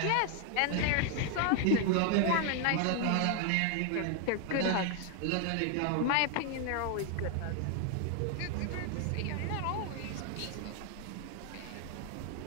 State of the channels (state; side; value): different; both; correlation 0.01